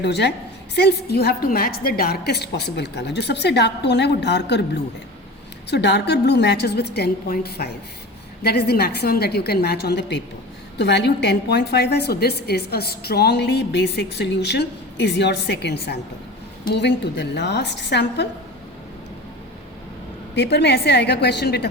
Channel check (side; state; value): both; normal; correlation 0.34